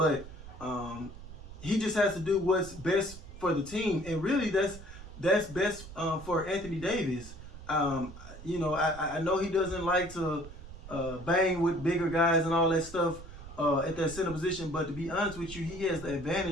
he just has to do what's best for the team, and really that's best for Anthony Davis. You know, I know he doesn't like to bang with bigger guys and all that stuff at that center position, but to be honest with you, he has the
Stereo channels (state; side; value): noise; right; rumble, 14 dB below the sound